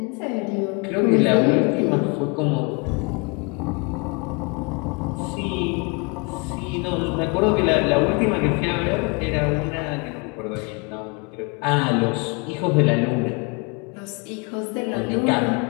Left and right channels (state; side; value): quieter; right; 31.8 dB